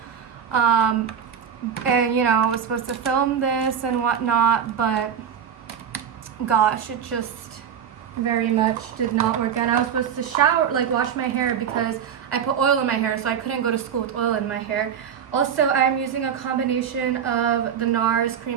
and you know, I was supposed to film this and whatnot, but gosh, it just very much did not work out. I was supposed to shower, like wash my hair, because I put oil in my hair, so I couldn't go to school with oil in my hair. Also, I'm using a combination of the NARS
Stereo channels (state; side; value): quieter; left; 8.1 dB